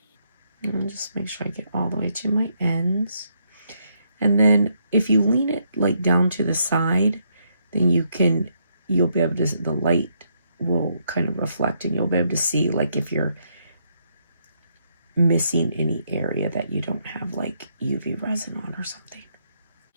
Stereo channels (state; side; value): inverted; both; correlation -0.75